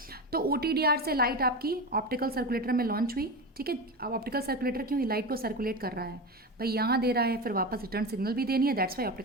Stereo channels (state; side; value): normal; both; correlation 0.22